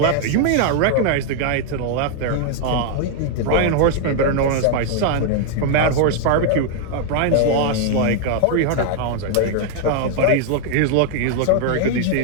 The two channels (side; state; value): both; different; correlation 0.00